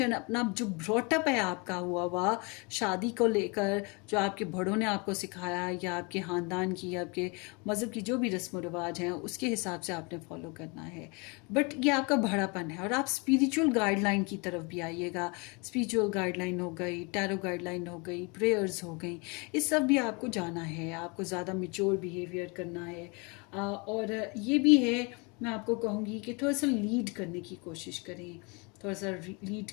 अपना जो ब्रॉटअप है आपका हुआ शादी को लेकर, जो आपके बड़ों ने आपको सिखाया, या आपके ख़ानदान की या आपके मज़हब की जो भी रस्म रिवाज हैं, उसके हिसाब से आपने फॉलो करना है। बट ये आपका बड़ापन है। और आप स्पिरिचुअल गाइडलाइन की तरफ भी आइएगा। स्पिरिचुअल गाइडलाइन हो गई, टैरो गाइडलाइन हो गई, प्रेयर्स हो गई, इस सब भी आपको जाना है। आपको ज़्यादा मैच्योर बिहेवियर करना है। और ये भी है, मैं आपको कहूँगी कि थोड़ा सा लीड करने की कोशिश करें, थोड़ा सा लीड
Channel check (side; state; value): right; quieter; 30.3 dB